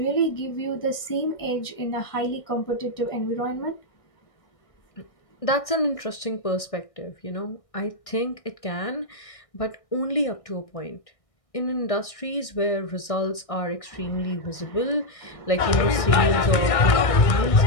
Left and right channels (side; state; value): right; late; 1.6 ms